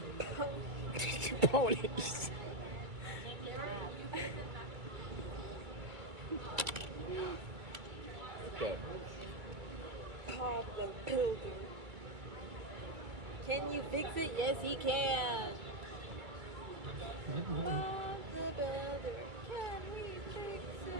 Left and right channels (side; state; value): left; late; 2.3 ms